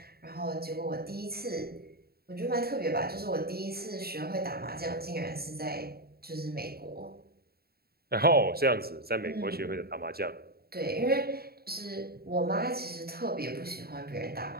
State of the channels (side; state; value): left; late; 0.45 ms